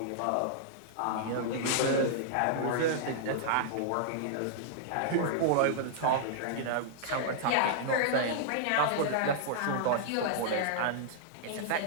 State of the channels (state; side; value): different; both; correlation -0.01